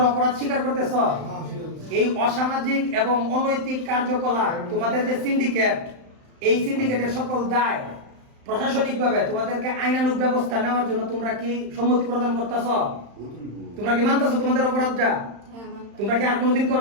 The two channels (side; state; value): left; late; 35 ms